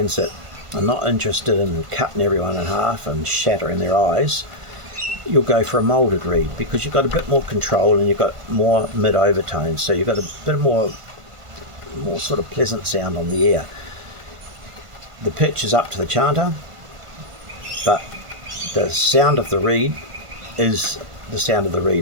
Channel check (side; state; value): left; late; 1.5 ms